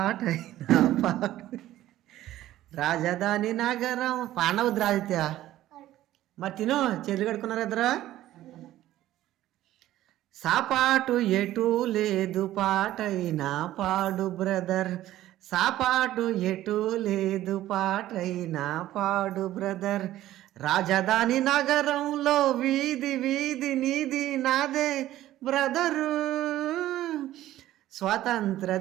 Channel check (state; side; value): quieter; left; 14.2 dB